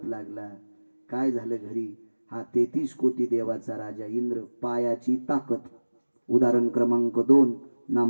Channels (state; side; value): inverted; both; correlation -1.00